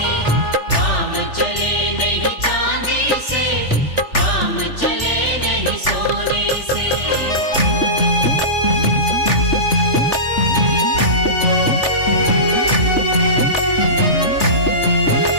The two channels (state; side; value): late; right; 3.4 ms